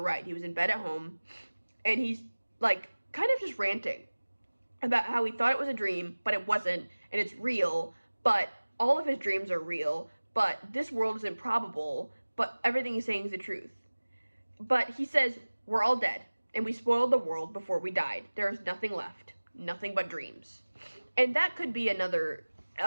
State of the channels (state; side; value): inverted; both; correlation -1.00